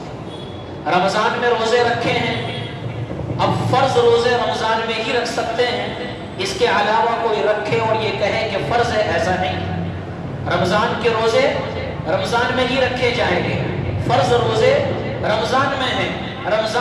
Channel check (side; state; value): both; identical; correlation 1.00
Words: رمضان میں روزے رکھے ہیں، اب فرض روزے رمضان میں ہی رکھ سکتے ہیں، اس کے علاوہ کوئی رکھے اور یہ کہے کہ فرض ہے، ایسا نہیں۔ رمضان کے روزے رمضان میں ہی رکھے جائیں گے، فرض روزے رمضان میں ہیں،